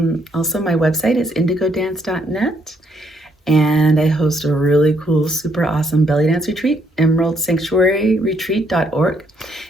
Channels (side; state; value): both; normal; correlation 0.72